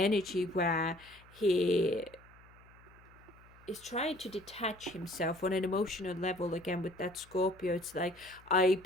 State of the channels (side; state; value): left; noise; hum, 25 dB below the sound